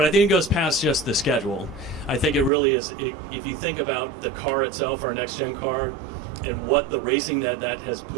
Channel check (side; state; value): left; drops out; at 2.5 s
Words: I think it goes past just the schedule. I think it really is, if you think about the car itself, our next-gen car, and what the racing that has